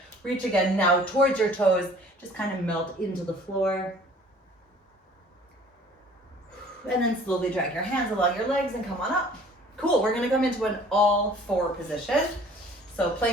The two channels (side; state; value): both; normal; correlation 0.51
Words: Reach again now towards your toes. Just kind of melt into the floor. And then slowly drag your hands along your legs and come on up. Cool, we're gonna come into an all four position. So